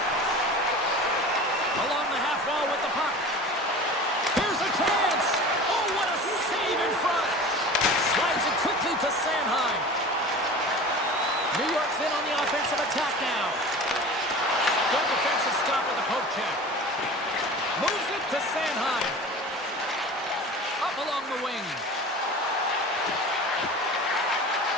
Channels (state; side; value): normal; both; correlation 0.37